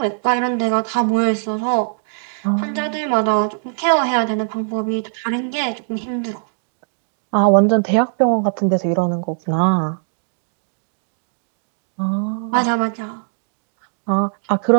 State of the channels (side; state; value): left; silent; digital silence